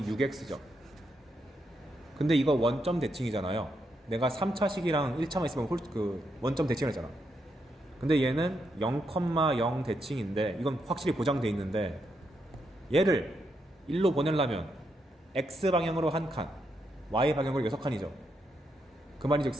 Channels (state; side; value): normal; both; correlation 0.81